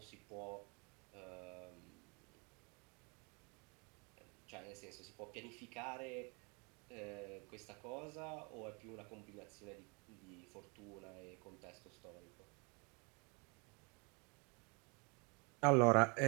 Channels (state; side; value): quieter; left; 32.1 dB